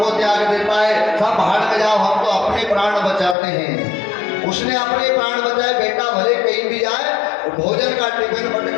त्याग देता है, सब भाड़ में जाओ, हम तो अपने प्राण बचाते हैं। उसने अपने प्राण बचाए, बेटा भले कहीं भी जाए, भोजन का टिफिन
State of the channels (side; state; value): right; drops out; at 3.4 s